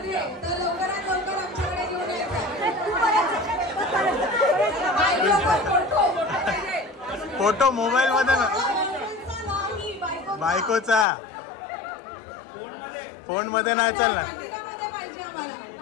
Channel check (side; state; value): right; drops out; at 11.1 s